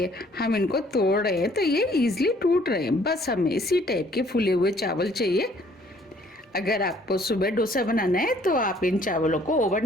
हम इनको तोड़ रहे हैं तो ये इजीली टूट रहे हैं। बस हमें इसी टाइप के फूले हुए चावल चाहिए। अगर आपको सुबह डोसा बनाना है तो आप इन चावलों को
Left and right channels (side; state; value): both; normal; correlation 0.60